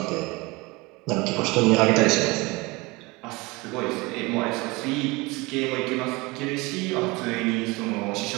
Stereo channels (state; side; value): quieter; left; 24.2 dB